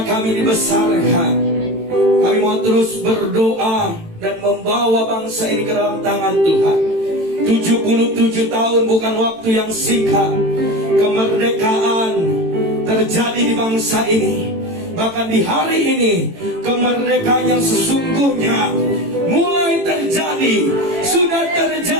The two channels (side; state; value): left; late; 18 ms